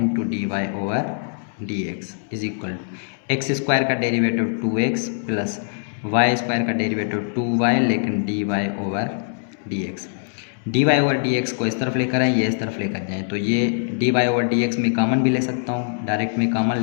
dy/dx is equal to X square का derivative 2x plus Y square का डेरिवेटिव 2y, लेकिन dy/dx। dy/dx को इस तरफ लेकर आए, ये इस तरफ लेकर जाएँ, तो ये dy/dx में कॉमन भी ले सकता हूँ, डायरेक्ट में कॉमन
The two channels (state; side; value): silent; right; digital silence